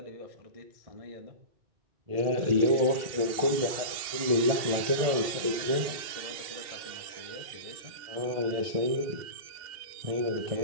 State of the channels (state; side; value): late; left; 2.7 ms